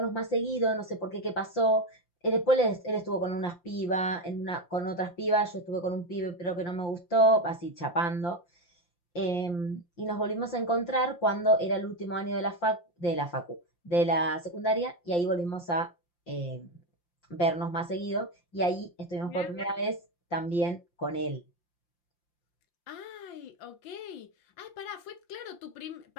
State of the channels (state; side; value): late; right; 5.7 ms